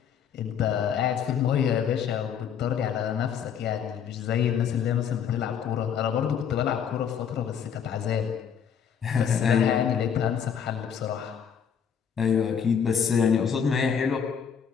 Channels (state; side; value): quieter; right; 7.7 dB